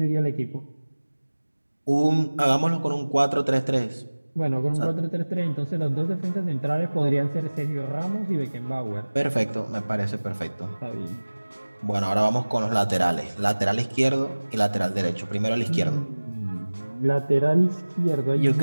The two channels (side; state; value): both; inverted; correlation -1.00